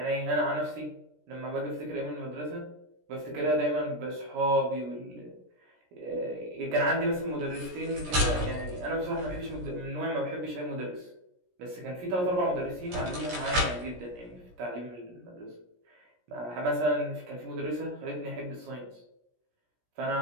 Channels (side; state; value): left; late; 17 ms